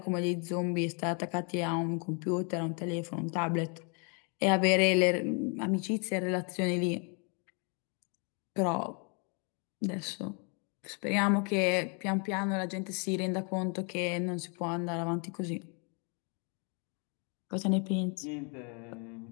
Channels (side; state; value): right; quieter; 36.6 dB